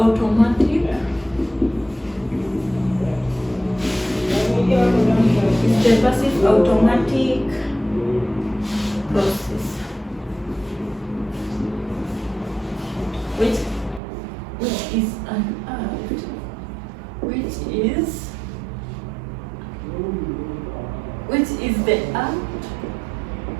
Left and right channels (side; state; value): left; drops out; at 14.0 s